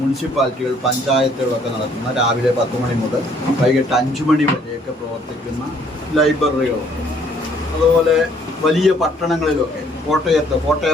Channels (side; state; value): both; normal; correlation 0.63